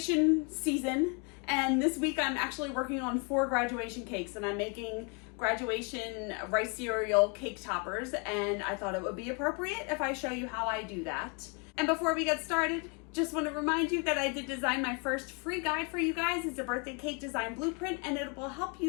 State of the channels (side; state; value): right; quieter; 34.2 dB